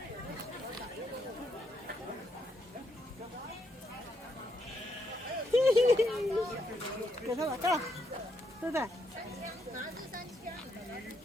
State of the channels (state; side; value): normal; both; correlation 0.77